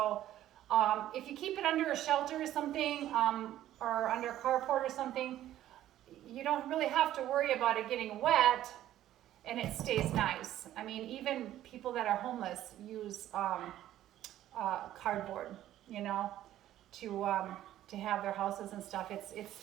if you keep it under a shelter or something, or under a carport or something, you don't really have to worry about it getting wet and it stays nice. I mean, even people that are homeless use cardboard, you know, to have their houses and stuff. It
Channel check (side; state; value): left; quieter; 12.9 dB